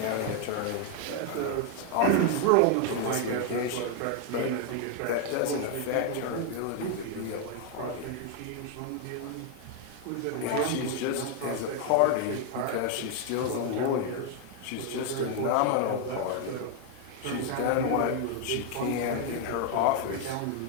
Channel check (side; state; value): both; different; correlation 0.00